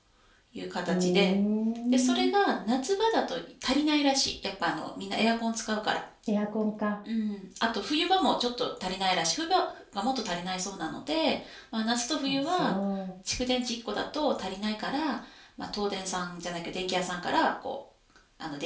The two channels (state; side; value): identical; both; correlation 1.00